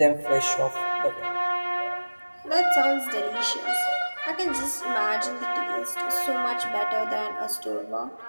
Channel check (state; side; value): inverted; both; correlation -1.00